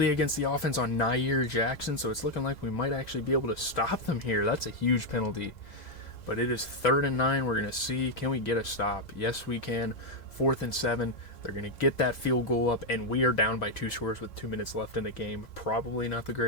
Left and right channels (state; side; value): late; right; 2.0 ms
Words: against the offense on Nair Jackson, so it's looking like we might actually be able to stop them here. That's a huge penalty. But it is 3rd and 9. We're going to see, can we get a stop? Yes, we can. 4th and 7. They're going to get that field goal up, and we are down by 2 scores with 2 minutes left in the game. Probably not the